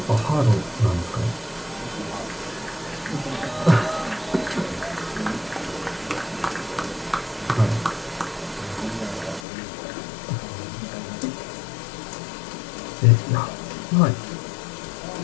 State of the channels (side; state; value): right; drops out; at 9.4 s